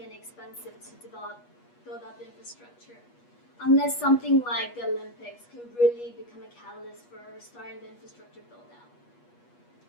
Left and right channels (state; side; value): late; right; 8.3 ms